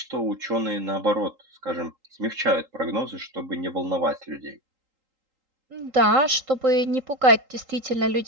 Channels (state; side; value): late; left; 3.8 ms